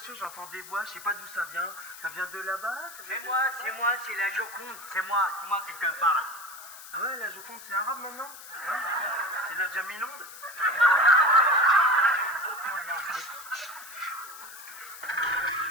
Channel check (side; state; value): left; noise; hiss, 15 dB below the sound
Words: que j'entends des voix, je sais pas d'où ça vient. Ça vient de là-bas? C'est moi, c'est la Joconde. C'est moi qui te parle. Ah ouais, la Joconde, c'est arabe maintenant? Hein? C'est la Jamilonde?